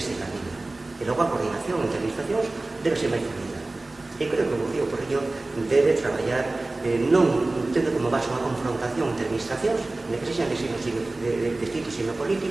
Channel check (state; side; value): quieter; left; 3.0 dB